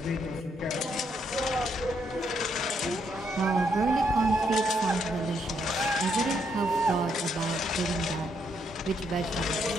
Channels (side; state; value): both; normal; correlation 0.75